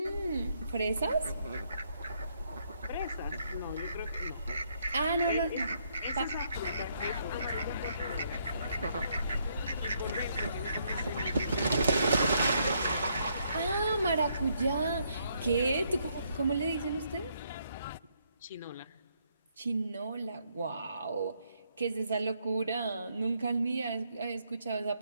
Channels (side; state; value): both; inverted; correlation -0.73